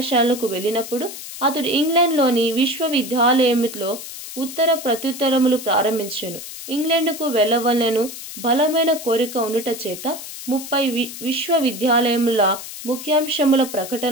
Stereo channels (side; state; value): left; noise; hiss, 11 dB below the sound